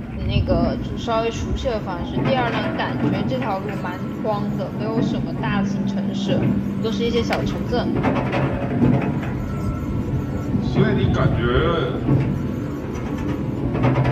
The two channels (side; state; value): both; identical; correlation 1.00